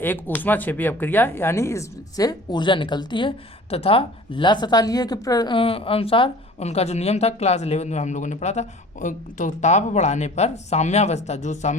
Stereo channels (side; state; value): both; normal; correlation 0.45